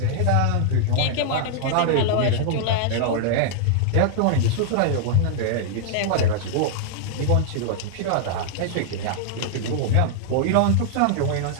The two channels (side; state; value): both; different; correlation -0.01